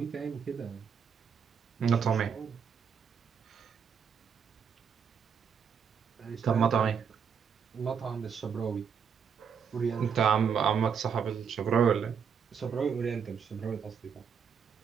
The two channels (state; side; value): quieter; left; 6.9 dB